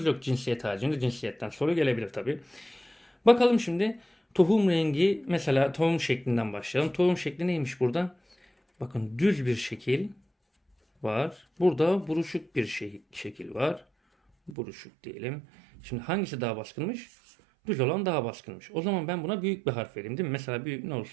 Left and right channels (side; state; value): left; drops out; at 14.6 s